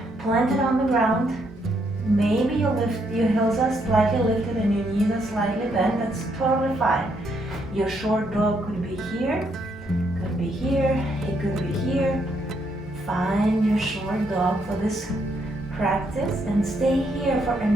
planted on the ground. Maybe your heels are slightly lifted and your knees are slightly bent. That's totally fine. Your short dog could be here, could be here, it could be here. Find your short dog for this practice and stay here for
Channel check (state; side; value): normal; both; correlation 0.74